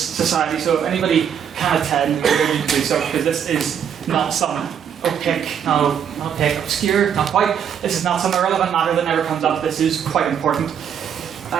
So if anybody can attend, you're going to do so, because this is not some obscure, not quite. This is not some irrelevant matter that never comes up. This is quite important.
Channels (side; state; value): left; quieter; 8.3 dB